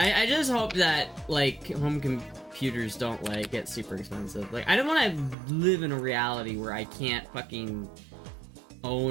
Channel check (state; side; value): drops out; left; at 5.4 s